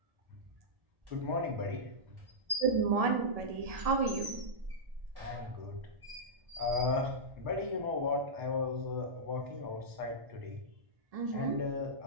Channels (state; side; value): late; left; 1.7 ms